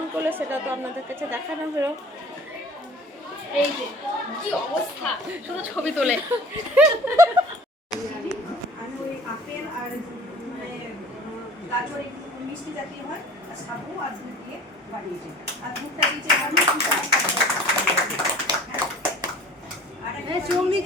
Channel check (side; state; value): both; normal; correlation 0.46